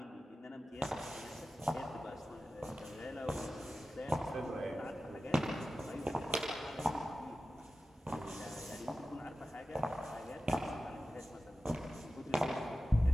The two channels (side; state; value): both; normal; correlation 0.94